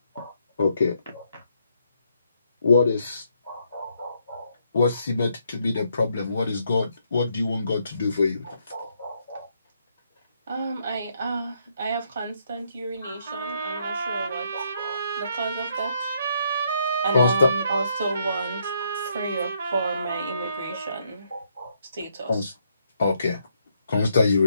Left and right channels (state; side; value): inverted; both; correlation -0.74